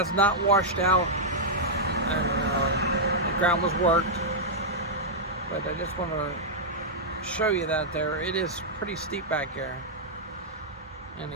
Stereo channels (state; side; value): normal; both; correlation -0.08